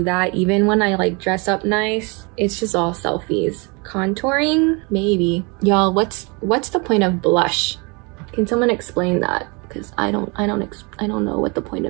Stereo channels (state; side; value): quieter; left; 30.2 dB